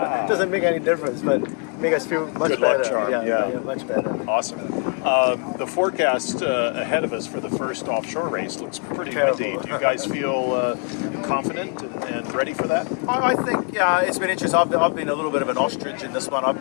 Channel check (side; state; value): right; quieter; 38.9 dB